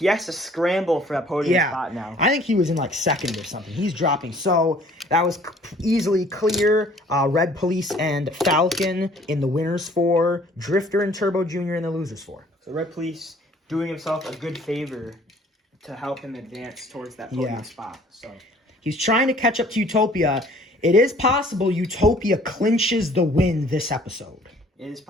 has to scramble for that podium spot now. I think he was in like 2nd or something. He's dropping. So that was easily clear. Red Police and Falcon in the winners 4. Drifter and Turbo Jr. in the losers 4. So Red Police doing himself a good favor to help him advance towards that podium spot. So he's trying to catch up to Utopia. It is possible Utopia clinches the win this episode. It is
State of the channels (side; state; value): both; normal; correlation 0.55